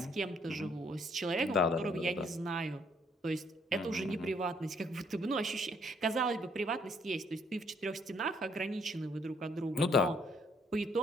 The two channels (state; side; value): normal; both; correlation 0.68